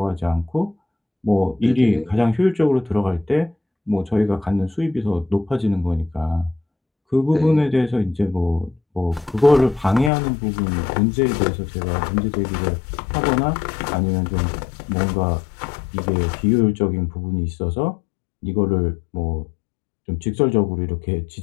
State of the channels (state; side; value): drops out; right; at 10.1 s